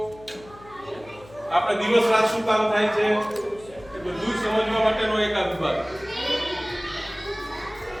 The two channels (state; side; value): noise; left; hum, 22 dB below the sound